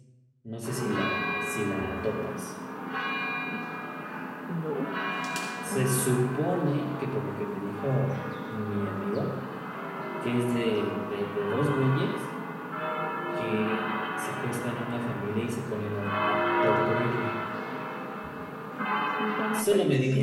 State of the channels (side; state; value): both; identical; correlation 1.00